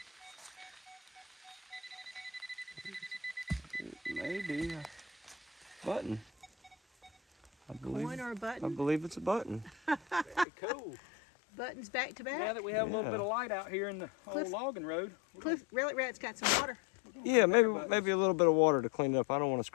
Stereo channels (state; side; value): drops out; right; at 10.5 s